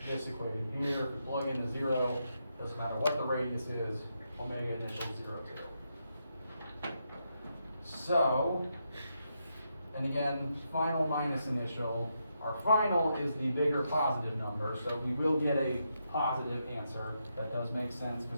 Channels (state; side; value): inverted; both; correlation -0.82